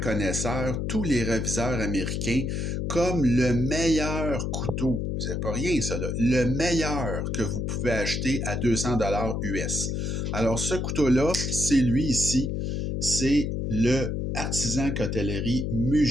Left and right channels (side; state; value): left; noise; hum, 1 dB below the sound